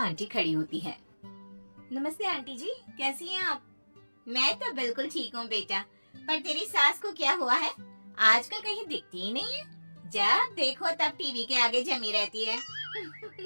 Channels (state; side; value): inverted; both; correlation -1.00